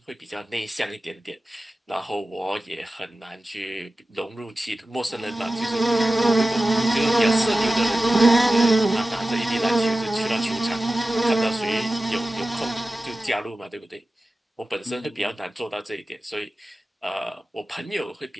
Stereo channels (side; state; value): both; normal; correlation 0.95